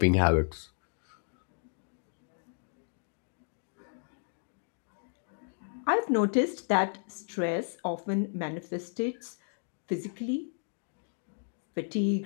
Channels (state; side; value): silent; right; digital silence